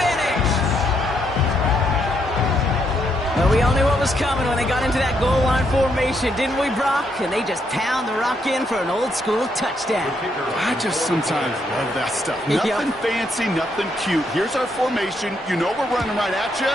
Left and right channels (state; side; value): normal; both; correlation 0.75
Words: But we all knew what was coming when they got into that goal line formation, didn't we, Brock? And they just pound the rock in for an old-school touchdown. I just sometimes love that stuff. Nothing fancy, nothing cute. Here's our formation. You know we're running right at you,